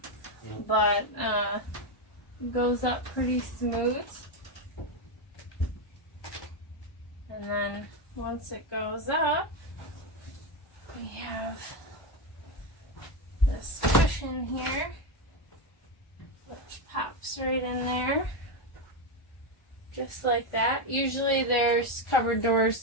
but it goes up pretty smooth. And then once it goes up, we have this cushion here, which pops right in there, just like that. Usually there's cupboard doors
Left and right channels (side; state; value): right; late; 1.4 ms